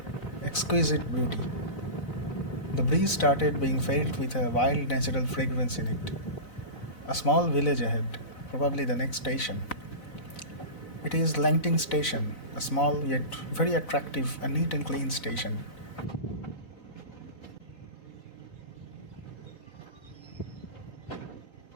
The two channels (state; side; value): late; right; 4.0 ms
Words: exquisite beauty. The breeze started being filled with a wild natural fragrance in it. A small village ahead, probably the next station. It is Langting Station, a small yet very attractive and neat and clean station.